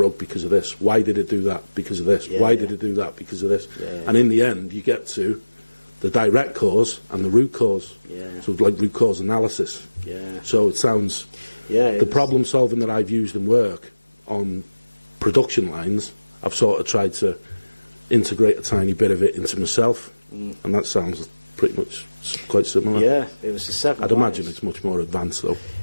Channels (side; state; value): both; inverted; correlation -1.00